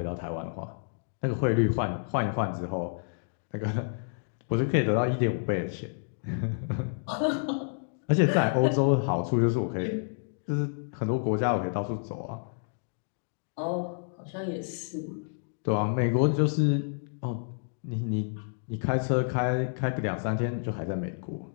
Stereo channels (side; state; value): right; silent; digital silence